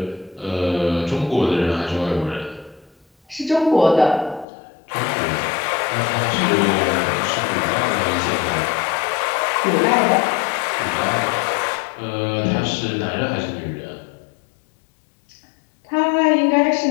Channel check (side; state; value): right; drops out; at 4.5 s